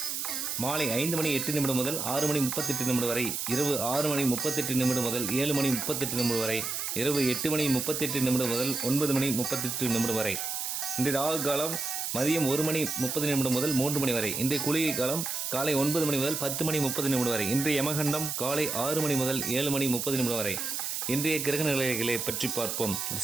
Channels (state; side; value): noise; right; hiss, 3 dB below the sound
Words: மாலை 5:08 முதல் 6:38 வரை, இரவு 6:38 முதல் 7:38 வரை, இரவு 8:38 முதல் 9:38 வரை. இன்றைய ராகு காலம் மதியம் 1:30 முதல் 3 மணி வரை. இன்றைய குளிகை காலம் காலை 9 மணி முதல் 10:30 வரை. இன்றைய யமகண்டம் காலை 6 மணி முதல் 7:30 வரை. இன்றைய கிரக நிலைகளை பற்றி பார்ப்போம்.